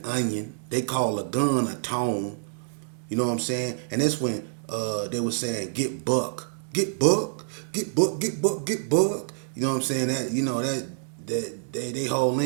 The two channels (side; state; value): left; silent; digital silence